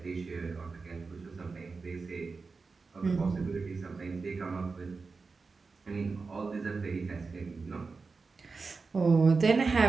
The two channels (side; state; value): left; quieter; 4.4 dB